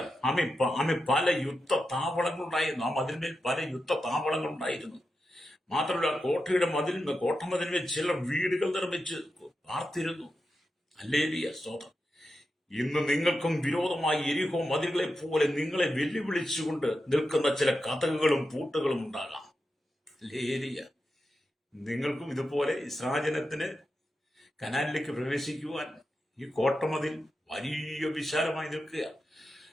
പല യുദ്ധ താവളങ്ങളുണ്ടായിരുന്നു. ആ മതിലിന്മേൽ പല യുദ്ധ താവളങ്ങളുണ്ടായിരുന്നു. മാത്രമല്ല, കോട്ടമതിലിന്മേൽ ചിലർ വീടുകൾ നിർമ്മിച്ച് പാർത്തിരുന്നു. ഹല്ലേലൂയ, സ്തോത്രം. ഇന്ന് നിങ്ങൾക്കും വിരോധമായി യെരിഹോ മതിലുകളെ പോലെ നിങ്ങളെ വെല്ലുവിളിച്ചുകൊണ്ട് നിൽക്കുന്ന ചില കതകുകളും പൂട്ടുകളും ഉണ്ടാകാം. ഹല്ലേലൂയ. നിങ്ങൾക്കും ഇതുപോലെ ഇസ്രായേലിന് കനാനിലേക്ക് പ്രവേശിക്കുവാൻ ഈ കോട്ടമതിൽ വലിയ വിശാലമായി നിൽക്കുക.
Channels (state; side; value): normal; both; correlation 0.89